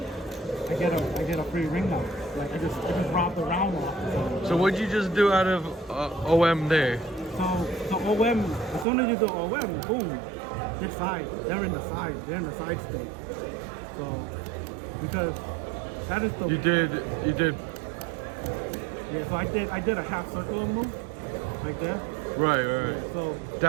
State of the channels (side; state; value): left; drops out; at 8.8 s